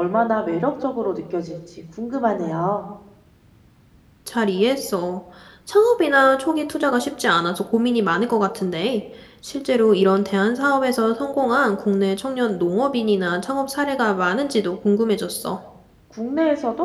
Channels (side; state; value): both; identical; correlation 1.00